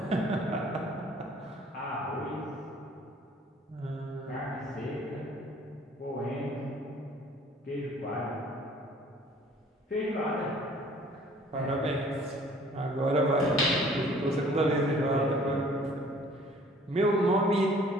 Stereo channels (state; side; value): normal; both; correlation 0.54